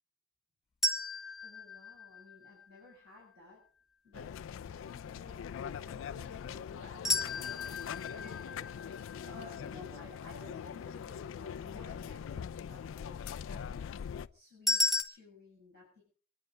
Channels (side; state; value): right; quieter; 3.2 dB